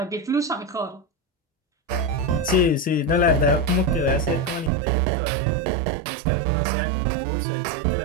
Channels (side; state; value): left; drops out; at 4.7 s